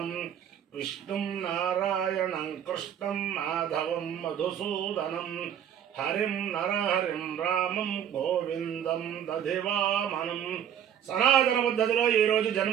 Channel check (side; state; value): left; quieter; 9.6 dB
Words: విష్ణుం నారాయణం కృష్ణం మాధవం మధుసూదనం హరిం నరహరిం రామం గోవిందం దధివామనం. సనాతన పద్ధతిలో ఈరోజు